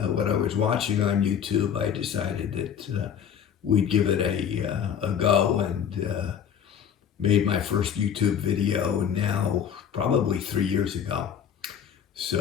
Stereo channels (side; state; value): right; quieter; 8.2 dB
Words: what I was watching on YouTube. I decided that we'd give it a go, and made my first YouTube video now probably 3 years ago.